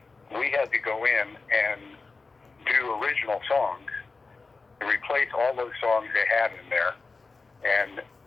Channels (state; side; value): quieter; right; 4.0 dB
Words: we had to go in and do original songs, to replace all those songs they had in there, and